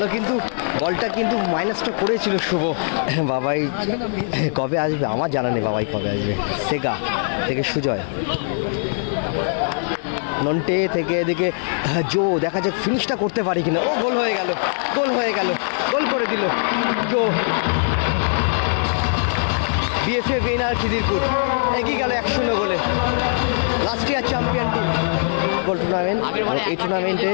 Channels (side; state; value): right; silent; 65 dB below the other